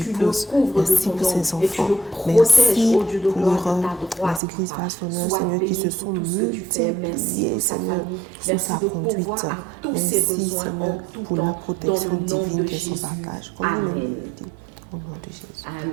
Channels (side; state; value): left; drops out; at 4.4 s